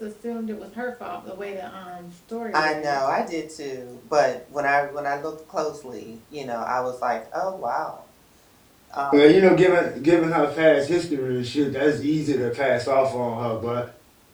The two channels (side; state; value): both; identical; correlation 1.00